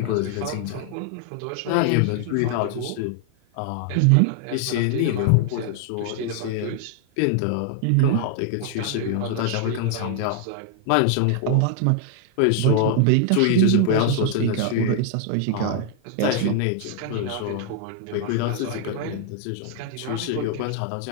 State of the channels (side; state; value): both; different; correlation 0.00